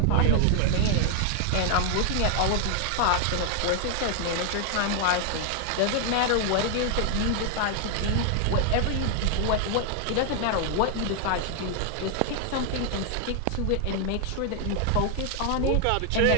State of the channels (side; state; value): both; different; correlation 0.00